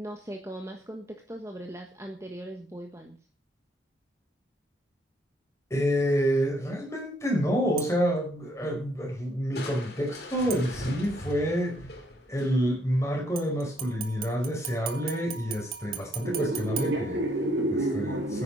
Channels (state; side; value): normal; both; correlation 0.69